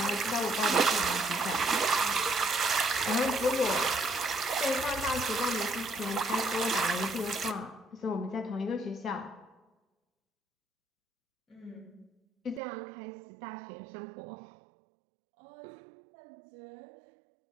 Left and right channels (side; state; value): left; drops out; at 12.6 s